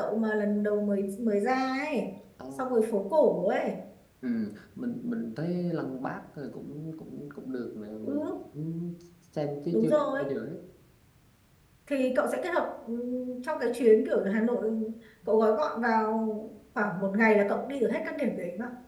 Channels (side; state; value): both; identical; correlation 1.00